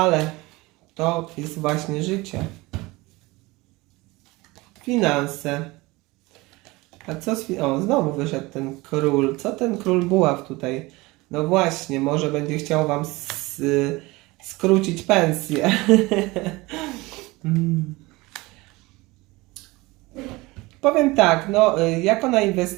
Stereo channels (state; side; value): quieter; left; 22.1 dB